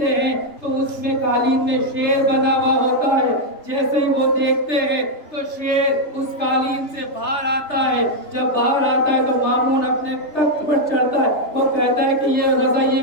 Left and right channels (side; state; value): right; late; 3.3 ms